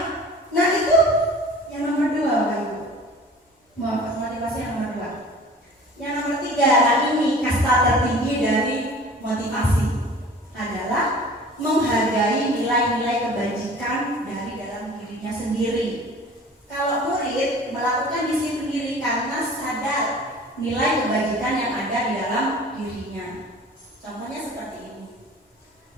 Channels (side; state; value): both; normal; correlation 0.45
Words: Nah itu yang nomor 2 Bapak Ibu. Motivasi yang nomor 2. Yang nomor 3, nah ini kasta tertinggi dari motivasi adalah menghargai nilai-nilai kebajikan dari dalam dirinya sendiri. Kalau murid melakukan disiplin diri karena sadar nilai kebajikan yang ada di dalam dirinya. Contohnya seperti ini.